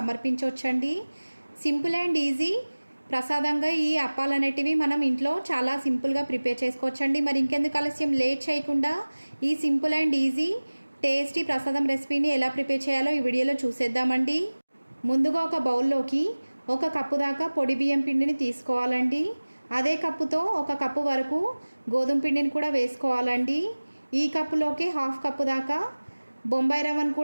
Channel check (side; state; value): both; inverted; correlation -1.00